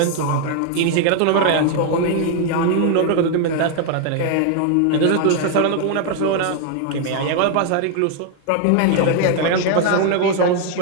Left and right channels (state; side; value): different; both; correlation 0.00